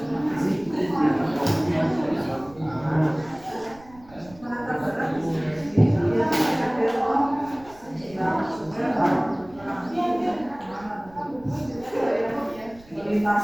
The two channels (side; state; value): right; noise; rumble, 24 dB below the sound